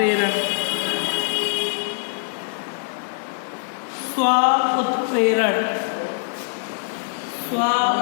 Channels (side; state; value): right; silent; digital silence